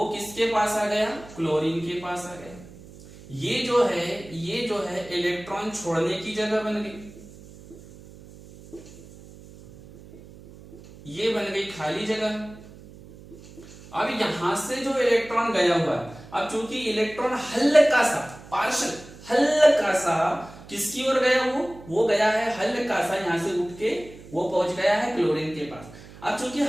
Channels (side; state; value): right; noise; hum, 19 dB below the sound